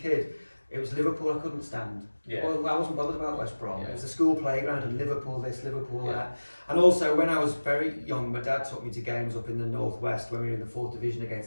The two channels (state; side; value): inverted; both; correlation -1.00